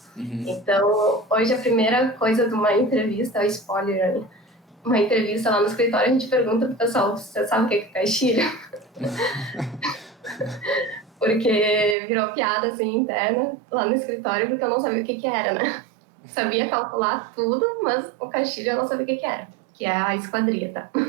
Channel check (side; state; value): left; drops out; at 12.0 s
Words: Então, hoje a primeira coisa de uma entrevista, é spoiler, uma entrevista lá no escritório, a gente pergunta pro pessoal, você sabe o que é caixilho? Porque virou piada, assim, interna lá no escritório, porque eu não sabia o que era, né? Sabia calcular tudo, mas o caixilho eu não sabia o que era, que é a esquadria, tá?